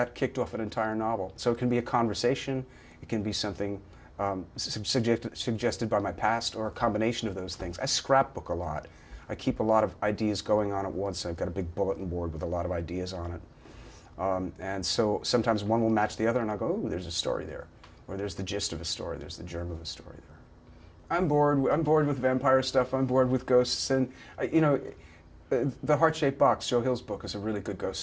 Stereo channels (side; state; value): both; identical; correlation 1.00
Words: kicked off an entire novel. So it can be a conversation, it can be something suggested by my past, or a combination of those things. I scrapbook a lot. I keep a lot of ideas going on at once. I've got a big bulletin board with a lot of ideas on it. And so sometimes one will match the other, and I'll go, "Oh, there's a story there." Or there's the gist of a story, there's the germ of a story there. I'm bored with vampire stuff, I'm bored with ghosts, and The Heart-Shaped Box, Joe Hill's book, is a really good ghost